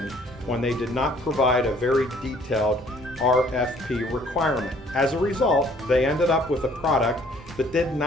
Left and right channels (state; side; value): normal; both; correlation 0.59